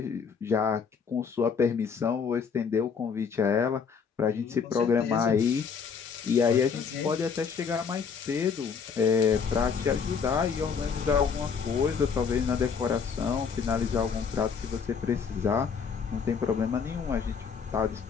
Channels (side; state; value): right; quieter; 6.1 dB